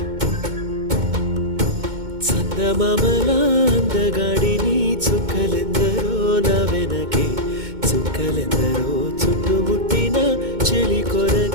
చందమామల అందగాడిని చుక్కలెందరో నా వెనకే చుక్కలెందరో చుట్టుముట్టిన చెలి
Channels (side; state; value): left; late; 2.2 ms